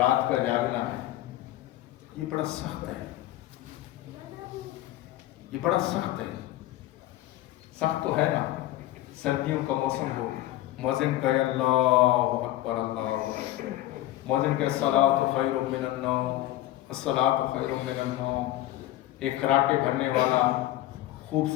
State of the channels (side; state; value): right; quieter; 15.2 dB